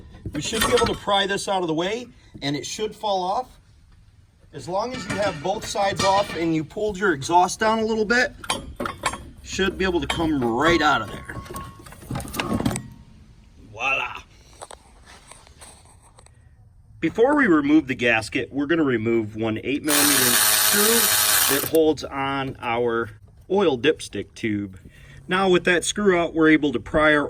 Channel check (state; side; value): identical; both; correlation 1.00